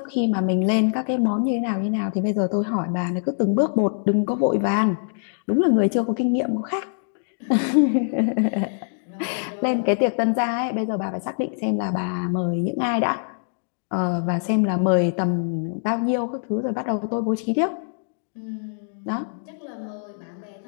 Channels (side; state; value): right; silent; digital silence